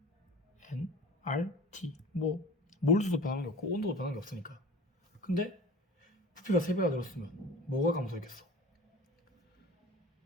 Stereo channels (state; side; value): normal; both; correlation 0.40